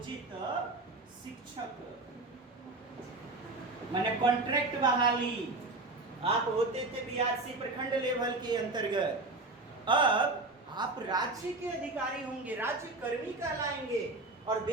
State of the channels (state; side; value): quieter; left; 3.1 dB